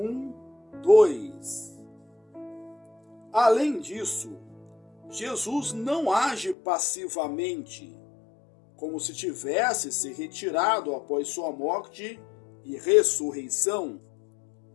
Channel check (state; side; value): drops out; right; at 6.6 s